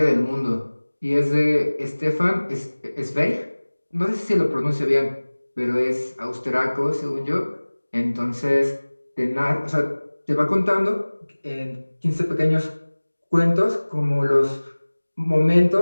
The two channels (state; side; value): inverted; both; correlation -1.00